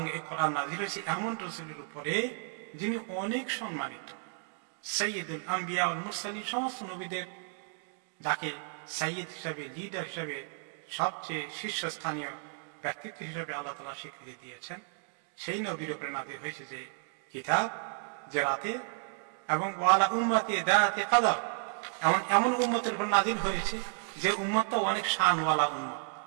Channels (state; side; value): silent; left; 56 dB below the other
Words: এই কোরআন নাযিল হয়েছে এমন রাসূলের উপরে যিনি অনেক সম্মানিত, সাইয়্যিদুল আম্বিয়া ওয়াল মুরসালিন, সমস্ত নবীদের যাকে সাইয়্যিদ হিসাবে, লিডার হিসাবে, সবচেয়ে শীর্ষস্থানীয় ব্যক্তিত্ব হিসাবে আল্লাহ তাআলা স্বীকৃতি দিয়েছেন, সেই নবীর উপরে নাযিল হয়েছে যে কিতাব, যে রাতে। এবং ওয়ালা উম্মতি দাতি কদর, এমন উম্মতের উপর নাযিল হয়েছে যে উম্মতটা অনেক শানওয়ালা উম্মত,